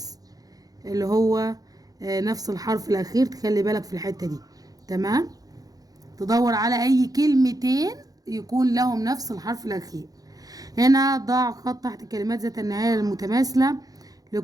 اللي هو نفس الحرف الاخير، تخلي بالك في الحتة دي. تمام، تدور على اي كلمتين يكون لهم نفس الحرف الاخير. هنا ضع خط تحت كلمات ذات النهاية المتماثلة.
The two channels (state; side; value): late; left; 0.18 ms